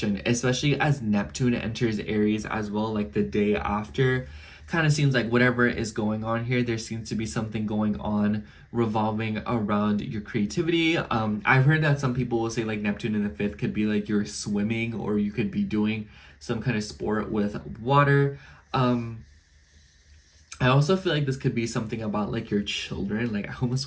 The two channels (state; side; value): identical; both; correlation 1.00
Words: especially as Neptune enters Aries as well, like the day after. Kind of seems like whatever is going on here, there seems to be something going on revolving around your creativity. I've heard that some people will say like Neptune in the 5th could be like you're swimming, or you could be doing some kind of sport with water. I also feel like this could be something about like your children. Like I